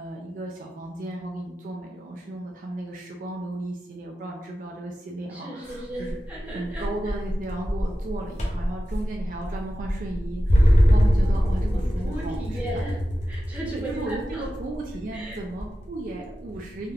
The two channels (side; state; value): both; normal; correlation 0.93